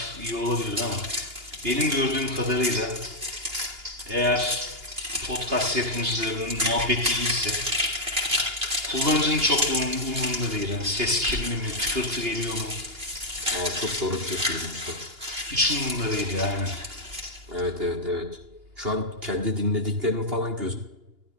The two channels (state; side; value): late; left; 2.8 ms